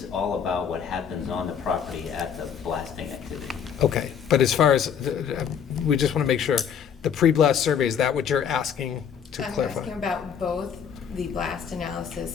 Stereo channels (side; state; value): right; quieter; 7.7 dB